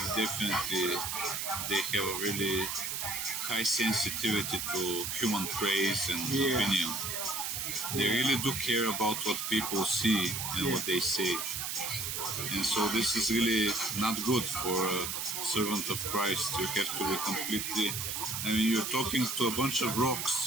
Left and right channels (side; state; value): right; noise; hiss, 2 dB below the sound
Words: definitely they have a really high sensitivity to human praise and opinion. They really do care about what people see and what they say. And so this is really not good for a servant of Christ. You have to be completely... I mean, you're talking to a bunch of